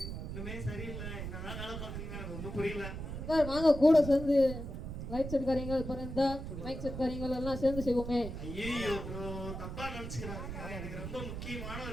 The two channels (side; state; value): right; noise; rumble, 7 dB below the sound